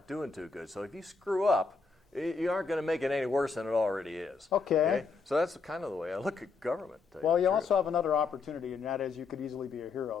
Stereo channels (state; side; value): quieter; right; 4.5 dB